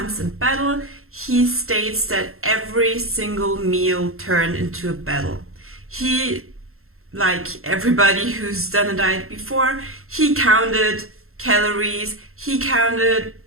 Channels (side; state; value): left; late; 0.62 ms